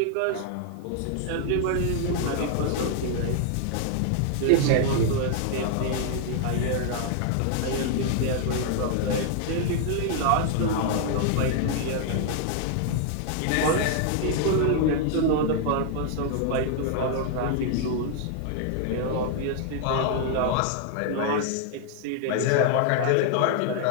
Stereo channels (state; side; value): different; both; correlation 0.00